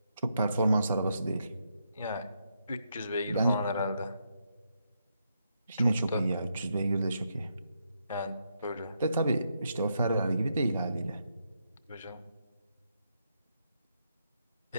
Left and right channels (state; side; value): inverted; both; correlation -0.80